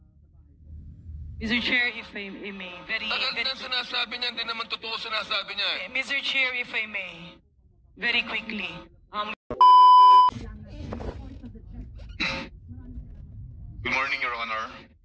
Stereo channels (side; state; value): both; identical; correlation 1.00